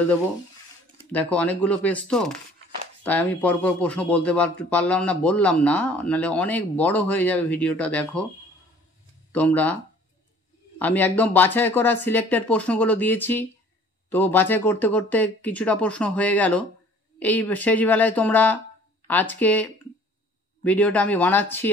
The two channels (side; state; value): both; normal; correlation 0.52